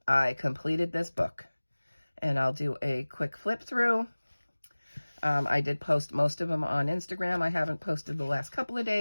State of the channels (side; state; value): both; inverted; correlation -1.00